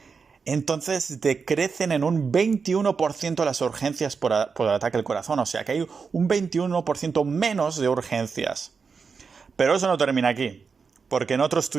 entonces decrecen en un 21% las urgencias por ataque al corazón. O sea que hay un 21% menos de urgencias. Pero eso no termina aquí, porque en otro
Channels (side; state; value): left; quieter; 5.4 dB